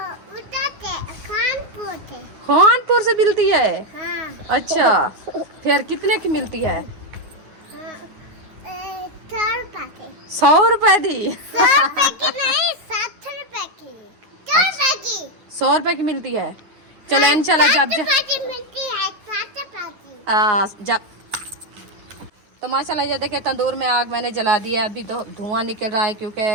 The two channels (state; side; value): late; left; 9.6 ms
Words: खानपुर से मिलती है। हाँ। अच्छा फिर कितने की मिलती है? 100 रुपए दी। 100 रुपए की मिलती है। चलो इंशाल्लाह जब तो माशाल्लाह ये देखे तंदूर में आग मैंने जला दी है। अभी तो धुआं निकल रहा है क्योंकि